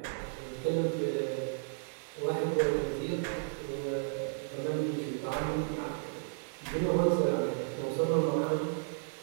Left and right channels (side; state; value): left; silent; digital silence